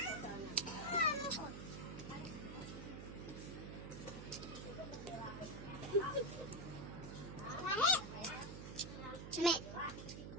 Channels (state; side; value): noise; right; hum, 8 dB below the sound